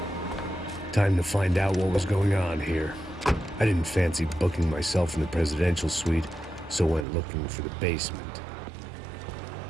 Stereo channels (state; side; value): drops out; left; at 7.1 s